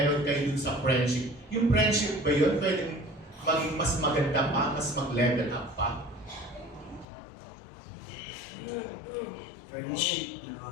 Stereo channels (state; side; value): drops out; right; at 7.1 s